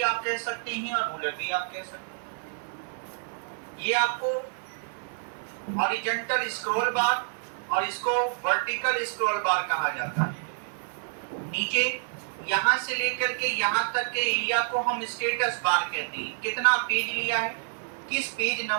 आप कह सकते हैं और रूलर भी आप कह सकते हैं। ये आपको हॉरिजॉन्टल स्क्रॉल बार और इसको वर्टिकल स्क्रॉल बार कहा जाता है। नीचे यहाँ से लेकर के यहाँ तक के एरिया को हम स्टेटस बार कहते हैं। कितना पेज लिया है, किस पेज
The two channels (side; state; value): left; silent; 56 dB below the other